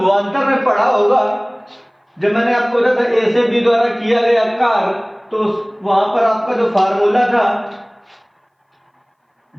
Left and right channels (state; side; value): identical; both; correlation 1.00